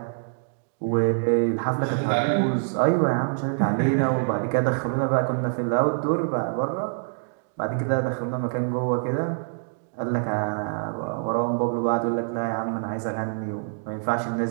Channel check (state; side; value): silent; left; digital silence